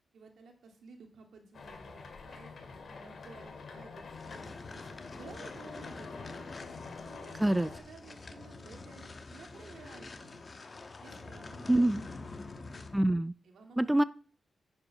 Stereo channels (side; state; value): both; normal; correlation 0.98